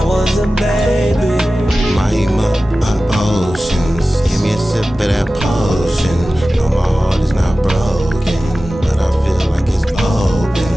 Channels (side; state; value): both; normal; correlation 0.95